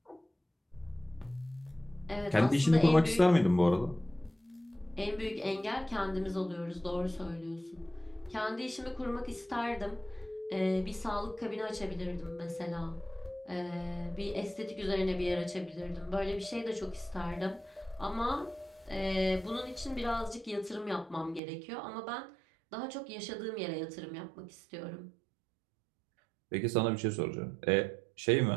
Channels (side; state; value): left; drops out; at 21.4 s